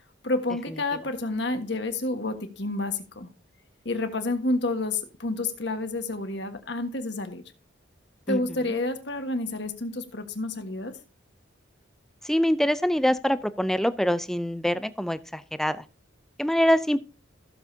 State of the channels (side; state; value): both; normal; correlation 0.70